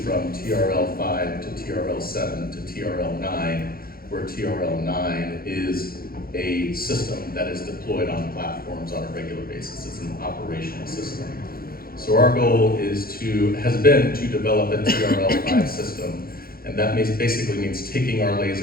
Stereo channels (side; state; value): right; late; 0.43 ms